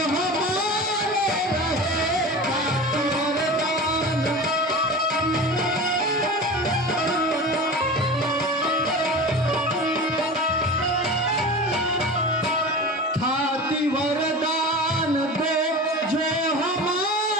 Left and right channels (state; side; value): normal; both; correlation 0.32